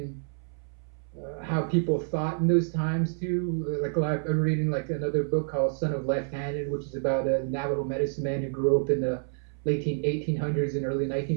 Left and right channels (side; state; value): left; silent; 59 dB below the other